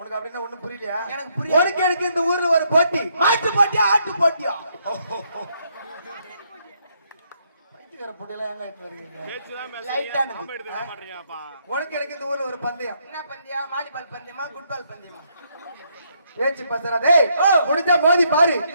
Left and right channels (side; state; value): both; inverted; correlation -0.73